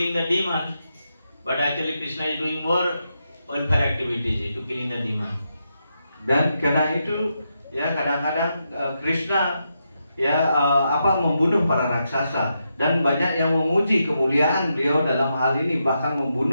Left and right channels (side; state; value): both; inverted; correlation -0.84